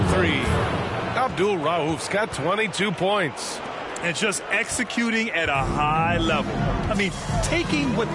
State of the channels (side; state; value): both; identical; correlation 1.00